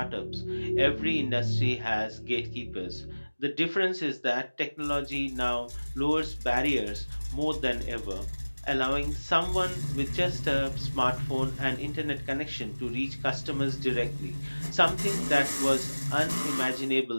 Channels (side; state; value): both; inverted; correlation -1.00